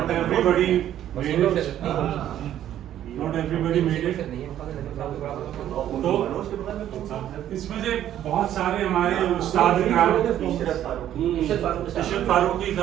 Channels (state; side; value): quieter; left; 11.5 dB